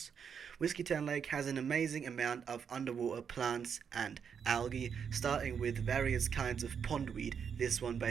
Whiskeytown Lake has an amazing amount of underwater plants and algae, starting with various kinds of pondweed, this one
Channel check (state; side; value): quieter; left; 7.1 dB